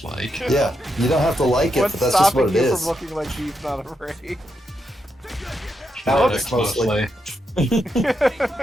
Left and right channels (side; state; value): both; normal; correlation 0.83